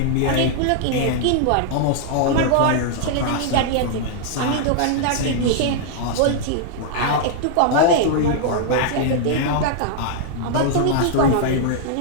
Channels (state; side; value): different; both; correlation -0.01